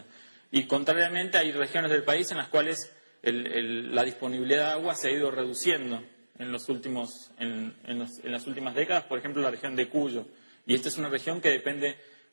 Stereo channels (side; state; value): both; inverted; correlation -1.00